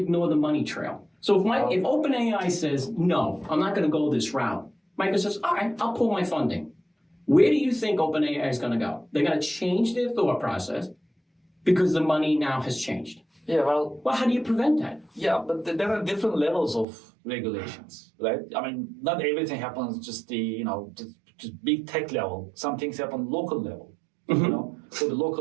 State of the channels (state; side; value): drops out; left; at 16.9 s